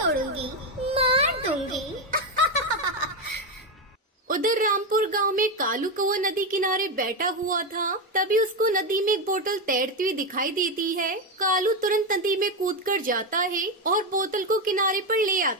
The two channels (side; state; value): both; normal; correlation 0.10